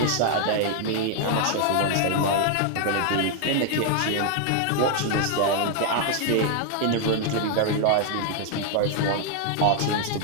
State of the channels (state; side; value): different; both; correlation 0.00